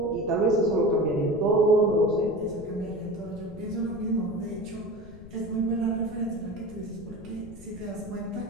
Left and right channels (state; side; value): noise; left; rumble, 18 dB below the sound